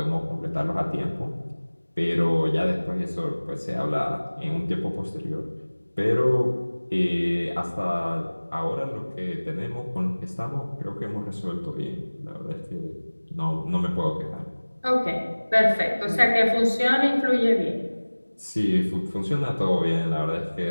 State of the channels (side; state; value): both; inverted; correlation -1.00